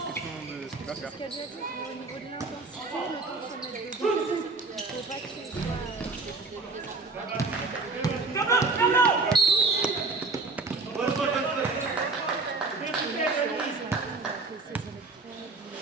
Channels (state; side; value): quieter; left; 3.8 dB